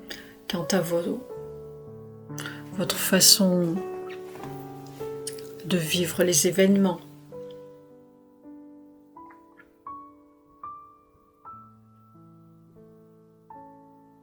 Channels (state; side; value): identical; both; correlation 1.00